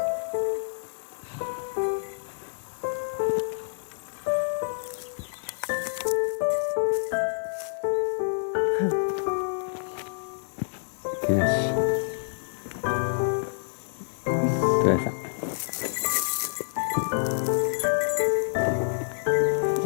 けなしどやさん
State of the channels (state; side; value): silent; right; digital silence